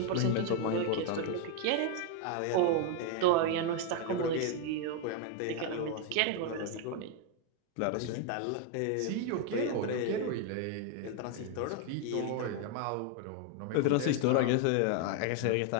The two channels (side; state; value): both; different; correlation 0.01